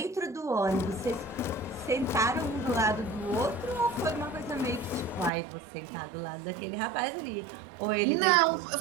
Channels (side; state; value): left; drops out; at 5.3 s